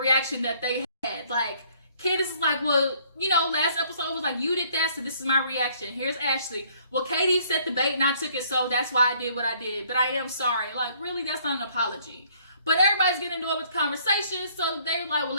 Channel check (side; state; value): both; inverted; correlation -0.61